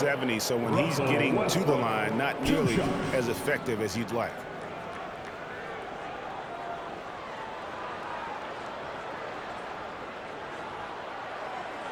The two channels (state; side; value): identical; both; correlation 1.00